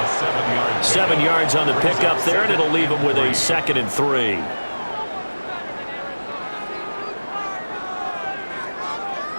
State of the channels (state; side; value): inverted; both; correlation -1.00